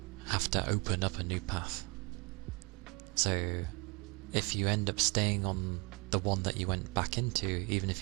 have to open up a new path. So if you end up staying on the one that you went back into, even if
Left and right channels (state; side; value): quieter; left; 29.1 dB